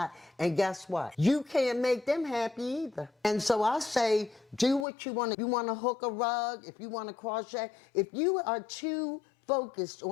And guess what? You can't make them happy either. And so I say, do what you want to. You want to hook a rug, if you want to crochet, if you are too focused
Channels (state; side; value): drops out; right; at 4.9 s